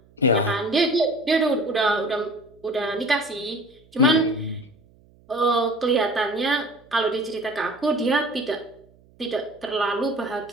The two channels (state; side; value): noise; right; hum, 29 dB below the sound